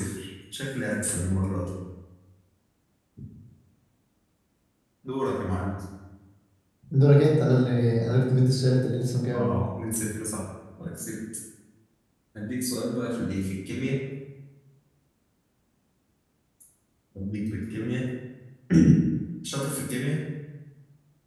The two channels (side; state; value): both; identical; correlation 1.00